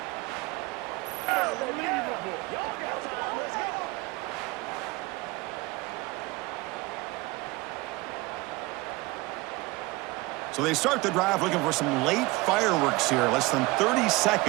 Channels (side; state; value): left; quieter; 21.9 dB